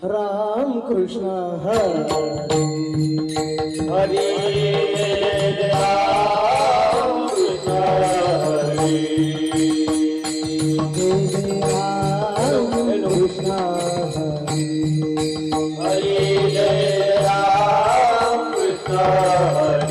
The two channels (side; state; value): both; identical; correlation 1.00